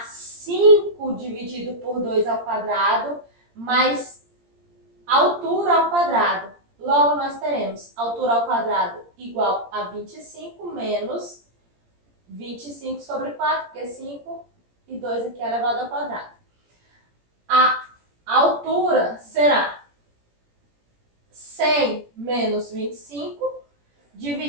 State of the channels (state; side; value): late; left; 17 ms